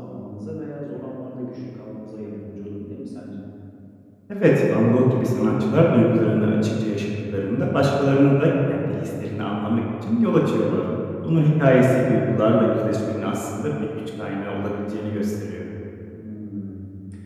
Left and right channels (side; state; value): both; identical; correlation 1.00